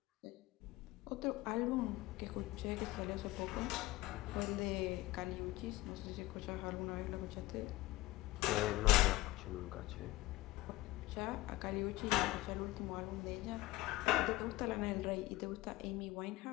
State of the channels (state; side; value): quieter; right; 18.8 dB